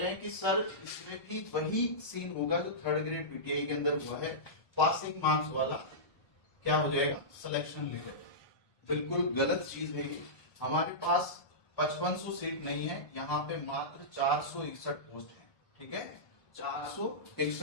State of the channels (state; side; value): late; right; 1.3 ms